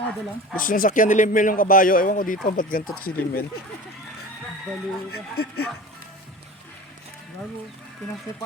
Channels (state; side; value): normal; both; correlation 0.36